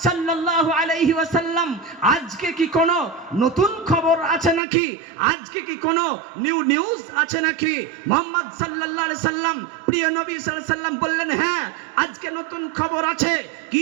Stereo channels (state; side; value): drops out; left; at 4.6 s